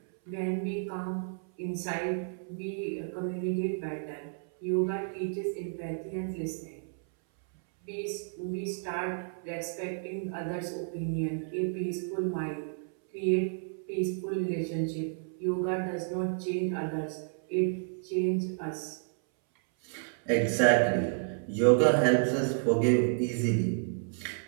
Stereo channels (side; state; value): left; silent; 57 dB below the other